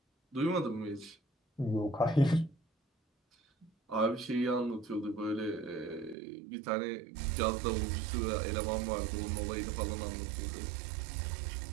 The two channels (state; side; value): drops out; left; at 6.2 s